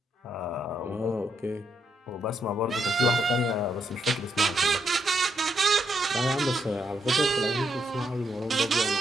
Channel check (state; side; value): normal; both; correlation 0.78